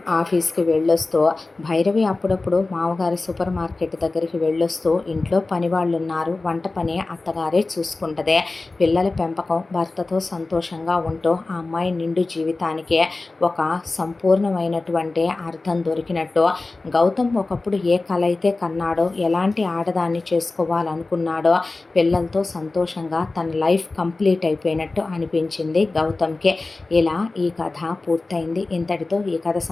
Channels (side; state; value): right; quieter; 3.4 dB